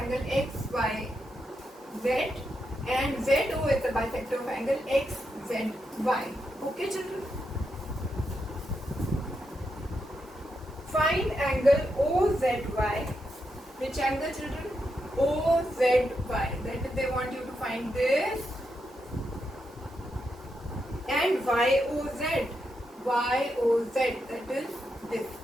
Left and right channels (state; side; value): normal; both; correlation 0.84